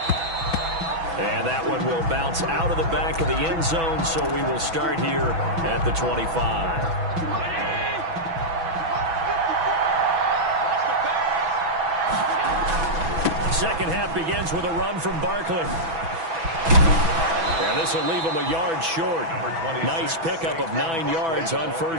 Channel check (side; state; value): left; late; 6.1 ms